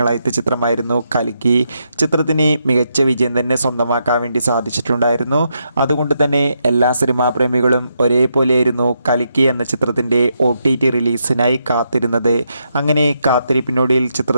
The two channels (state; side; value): inverted; both; correlation -0.81